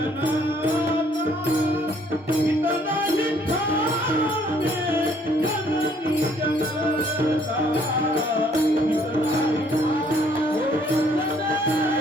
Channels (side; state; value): both; normal; correlation 0.63